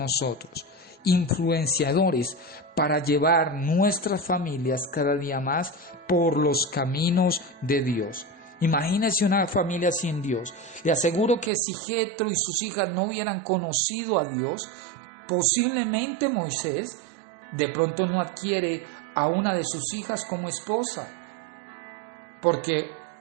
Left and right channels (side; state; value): left; drops out; at 11.5 s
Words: influenciadores para llevar nuestras familias cada día más por los caminos de Dios. Imagínese una familia sin Dios. Le aseguro que si Jethro y sus hijas no hubieran conocido a Dios, posiblemente Moisés de pronto no adquiere a una de sus hijas como esposa, porque